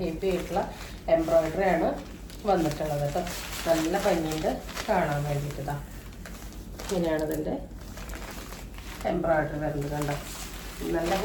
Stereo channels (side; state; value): both; identical; correlation 1.00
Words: ഹെവി ആയിട്ടുള്ള എംബ്രോയിഡറി ആണ് വന്നിട്ടുള്ളത് കേട്ടോ. നല്ല ഭംഗിയുണ്ട് കാണാൻ വേണ്ടിയിട്ടാ. ഇങ്ങനെയാണ് ഇതിൻ്റെ എംബ്രോയിഡറി വരുന്നത് കണ്ടോ. നല്ല